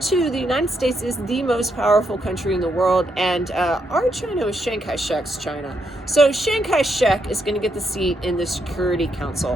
the United States is the most powerful country in the world, and our China was Chiang Kai-shek's China. So Chiang Kai-shek is going to get the seat in the Security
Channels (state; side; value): normal; both; correlation 0.78